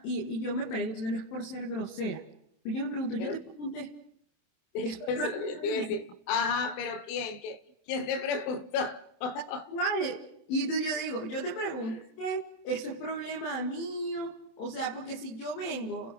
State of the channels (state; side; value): late; right; 27 ms